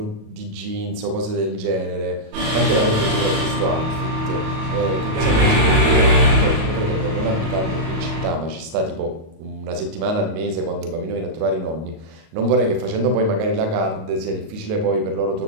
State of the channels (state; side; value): late; left; 37 ms